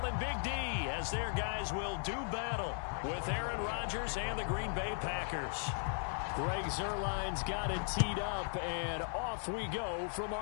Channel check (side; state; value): right; silent; 53 dB below the other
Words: in Big D as their guys will do battle with Aaron Rodgers and the Green Bay Packers. Greg Zuerlein's got it teed up, and off we go from